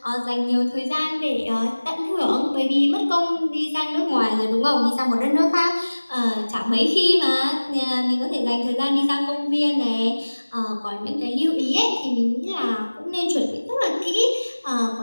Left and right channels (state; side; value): inverted; both; correlation -1.00